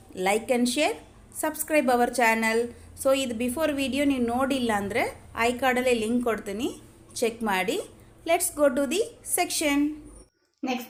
like and share, subscribe our channel. So ಇದು ಬಿಫೋರ್ ವಿಡಿಯೋ ನೀವು ನೋಡಿಲ್ಲ ಅಂದರೆ ಐ ಕಾರ್ಡಲ್ಲೇ ಲಿಂಕ್ ಕೊಡ್ತೀನಿ, ಚೆಕ್ ಮಾಡಿ. Let's go to the section. Next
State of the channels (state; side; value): identical; both; correlation 1.00